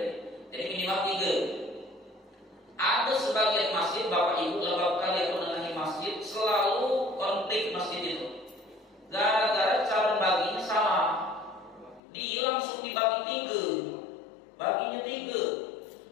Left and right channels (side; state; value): right; drops out; at 12.0 s